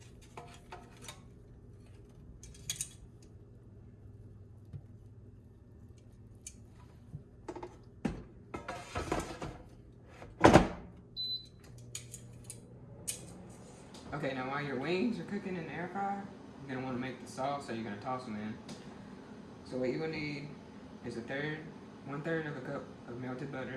Okay, now while your wings are cooking in the air fryer, you're gonna want to make the sauce, so you're gonna toss them in. So what you're gonna need is 1/3 of a cup of melted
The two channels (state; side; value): identical; both; correlation 1.00